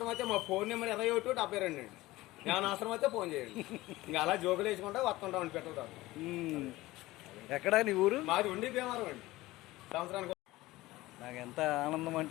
అయితే మా ఫోన్ నెంబర్ 2172 అండి. ఏమైనా అవసరం అయితే ఫోన్ చేయండి. ఇంకా అలా జోకులు వేసుకుంటా వస్తుంటామని పెట్టడం. ఎక్కడా నీ ఊరు? మాది ఉండి భీమారం అండి. సంవత్సరానికి నాకు ఎంత ఆనందం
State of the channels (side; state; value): right; quieter; 18.5 dB